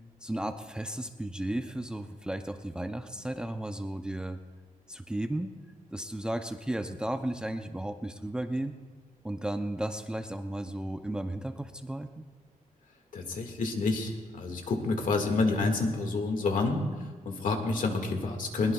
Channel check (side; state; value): both; normal; correlation 0.78